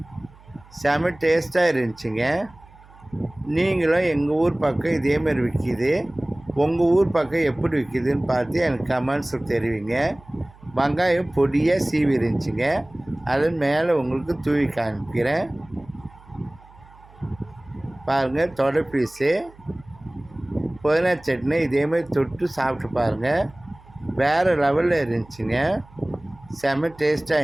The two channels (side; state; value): right; noise; hum, 24 dB below the sound